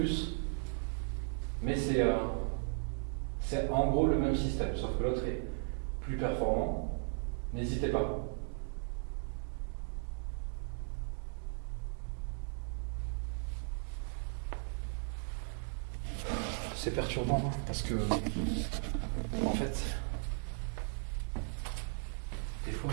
mais c'est en gros le même système, sauf que l'autre est plus performant. N'hésitez pas. C'est perturbant parce que, en fait, des fois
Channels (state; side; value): silent; left; 53 dB below the other